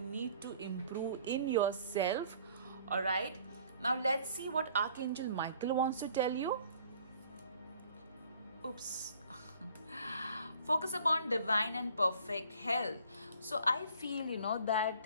need to improve in yourself. All right, now let's see what Archangel Michael wants to tell you. Oops. Focus upon divine and perfect health. So I feel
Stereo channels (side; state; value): both; inverted; correlation -0.55